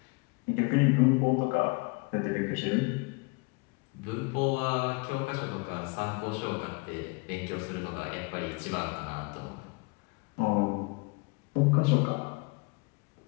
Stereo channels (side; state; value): right; quieter; 29.3 dB